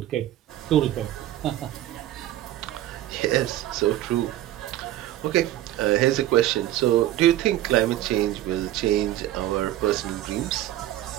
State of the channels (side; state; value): left; quieter; 13.6 dB